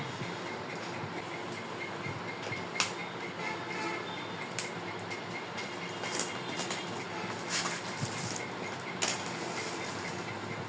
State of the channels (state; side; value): identical; both; correlation 1.00